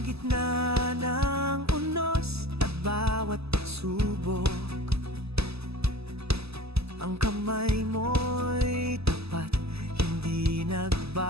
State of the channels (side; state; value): left; late; 0.79 ms